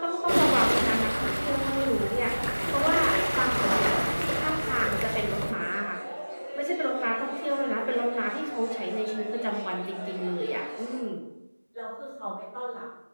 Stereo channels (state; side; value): inverted; both; correlation -1.00